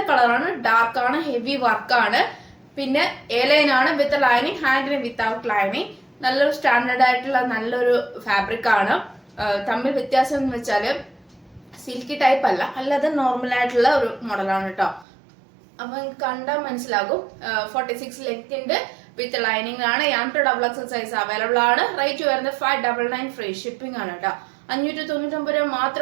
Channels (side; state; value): left; drops out; at 15.1 s